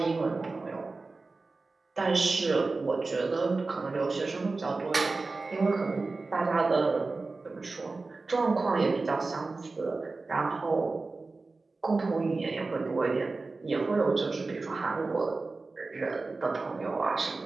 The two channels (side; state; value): left; quieter; 3.7 dB